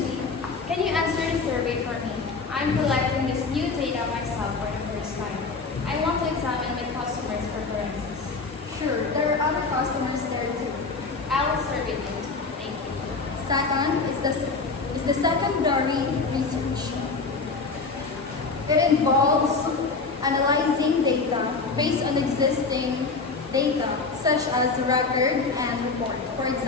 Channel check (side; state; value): right; quieter; 4.2 dB